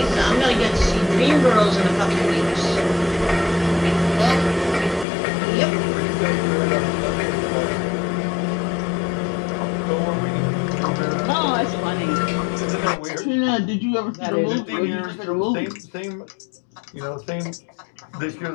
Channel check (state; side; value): drops out; right; at 5.1 s